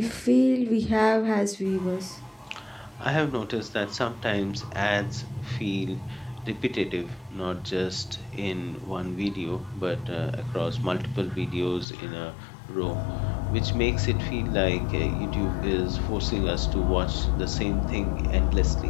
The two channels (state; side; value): drops out; right; at 11.9 s